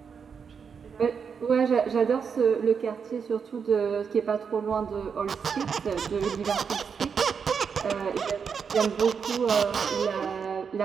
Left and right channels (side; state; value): left; quieter; 6.4 dB